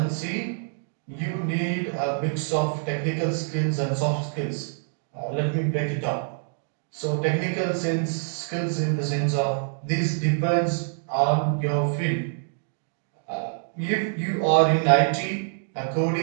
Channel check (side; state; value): left; silent; digital silence